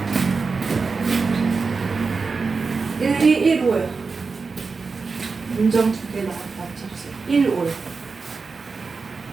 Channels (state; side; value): quieter; left; 4.6 dB